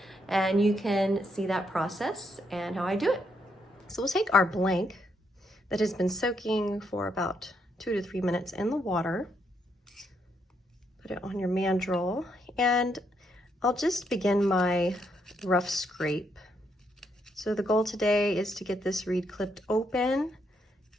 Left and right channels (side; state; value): both; normal; correlation 0.76